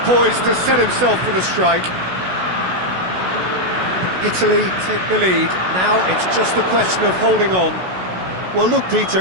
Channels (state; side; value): late; left; 16 ms